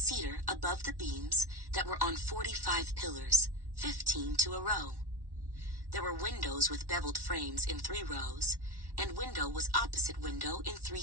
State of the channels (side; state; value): left; late; 1.1 ms